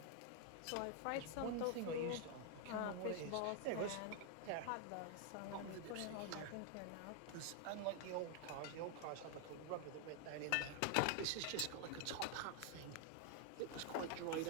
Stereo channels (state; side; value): different; both; correlation 0.00